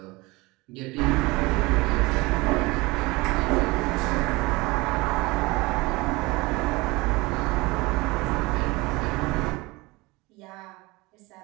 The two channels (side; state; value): left; quieter; 23.1 dB